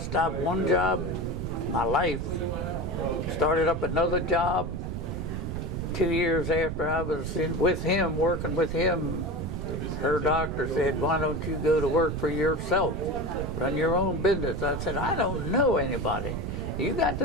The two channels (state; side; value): noise; right; rumble, 4 dB below the sound